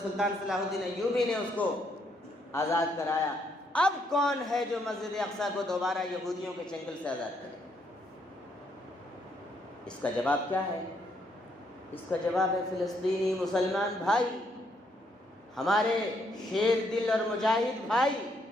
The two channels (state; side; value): normal; both; correlation 0.73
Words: سلطان صلاح الدین ایوبی نے اس کو آزاد کرایا۔ اب کون ہے جو مسجد اقصیٰ کو دوبارہ یہودیوں کے چنگل سے آزاد کرے؟ اس کا جواب کیا ہے؟ اس کا جواب ہے فلسطینی مسلمان بھائی، ہمارے شیر دل اور مجاہد بھائی۔